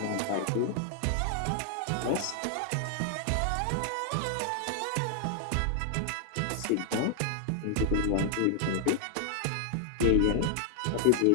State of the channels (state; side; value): different; both; correlation 0.00